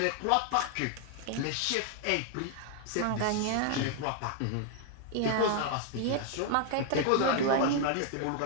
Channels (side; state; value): both; different; correlation 0.00